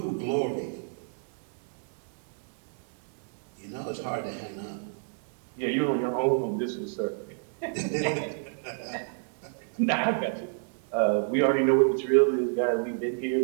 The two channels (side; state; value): left; silent; digital silence